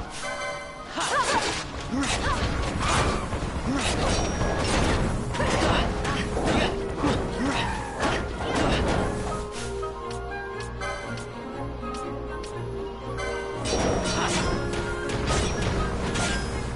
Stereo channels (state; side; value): identical; both; correlation 1.00